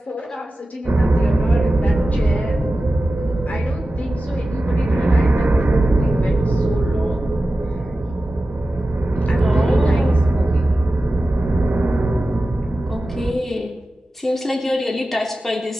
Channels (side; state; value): both; normal; correlation 0.94